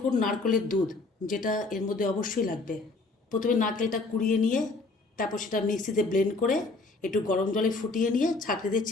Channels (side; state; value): right; quieter; 3.6 dB